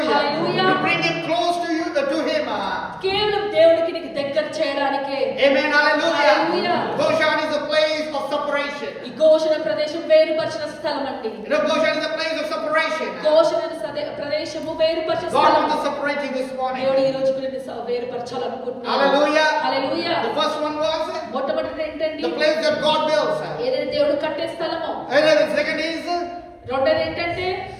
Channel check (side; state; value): both; identical; correlation 1.00